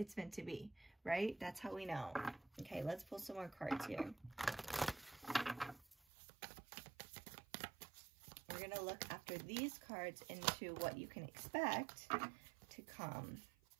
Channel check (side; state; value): left; drops out; at 6.0 s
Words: meant to be, right? That's how we know. Okay. Let's pull some more cards here. We're going to look after these cards into what you can expect to come.